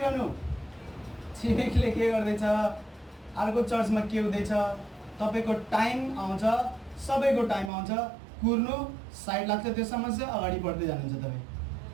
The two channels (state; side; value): drops out; left; at 7.7 s